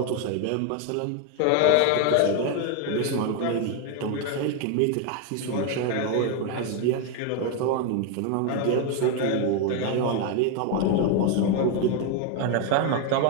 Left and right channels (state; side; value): different; both; correlation 0.01